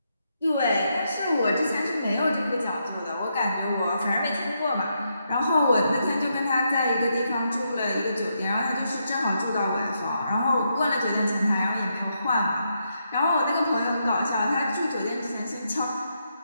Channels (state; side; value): inverted; both; correlation -0.80